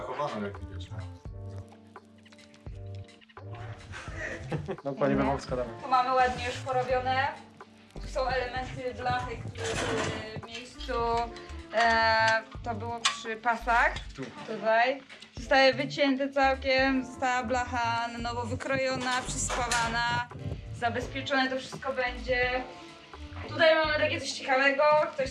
jak widać. No pani Wawowska damy. Tu mamy ładnie już porobione. Tu są elementy blachy, które były w miejscu. To było przy pasach. Tutaj. Zostały wycięte całkiem. Została blacha na nowo wykrojona, przyspawana. Zabezpieczone to wszystko będzie. Tutaj mamy takie coś ciekawego. Ktoś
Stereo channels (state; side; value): identical; both; correlation 1.00